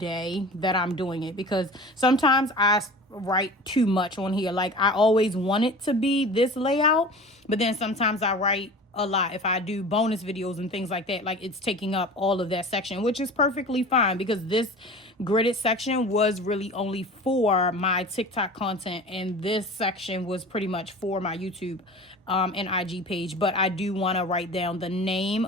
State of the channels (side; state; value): both; normal; correlation 0.37